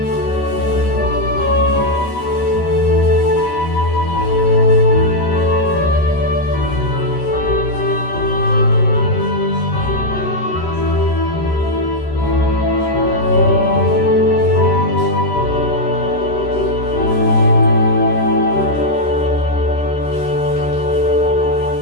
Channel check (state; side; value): late; right; 13 ms